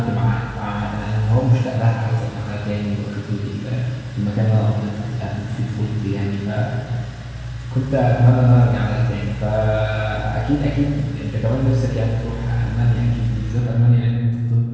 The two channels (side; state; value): both; identical; correlation 1.00